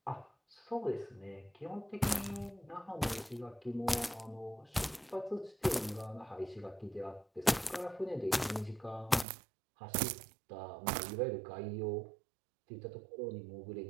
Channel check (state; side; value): drops out; left; at 9.2 s